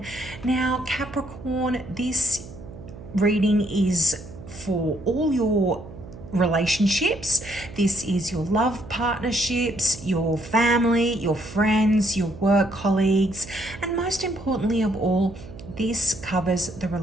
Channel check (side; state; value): right; noise; hum, 15 dB below the sound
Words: Now, Capricorn, this reading is for all your relationships. This is your love partnerships, your family, your friends, your work colleagues, and most importantly of all, this covers the